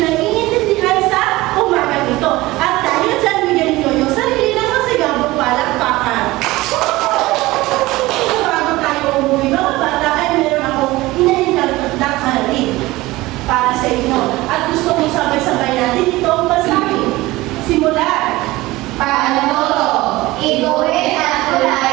naiintindihan sa umaga ito. At dahil dyan, bigyan niyo yung sarili ng masigabong palakpakan. So, bago tayo umuwi mga bata, ay meron akong inahinag na karin para sa inyo. At gusto kong sabay-sabay natin ito ang basahin. Simulan. Paano to? Iguhit at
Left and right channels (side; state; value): left; quieter; 19.2 dB